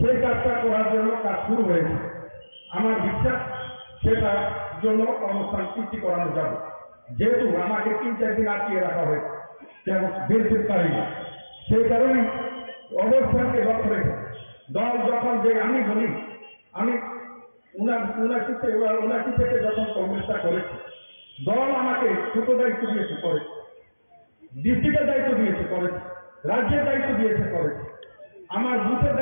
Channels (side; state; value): both; inverted; correlation -1.00